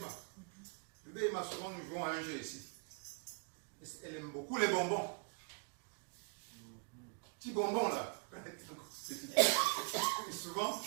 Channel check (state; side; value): quieter; left; 35.9 dB